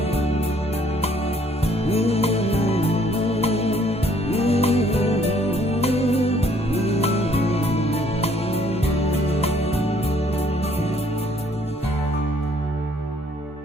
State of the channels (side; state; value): both; normal; correlation 0.63